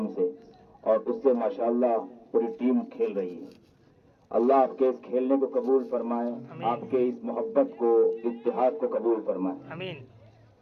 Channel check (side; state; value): both; identical; correlation 1.00